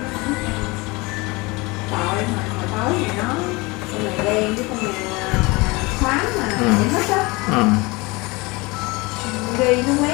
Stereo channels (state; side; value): quieter; right; 24.6 dB